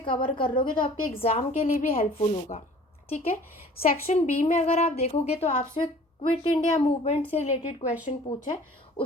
कर लोगे तो आपके एग्ज़ाम के लिए भी हेल्पफुल होगा, ठीक है। सेक्शन B में अगर आप देखोगे तो आपसे क्विट इंडिया मूवमेंट से रिलेटेड क्वेश्चन पूछा है।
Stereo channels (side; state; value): both; normal; correlation 0.49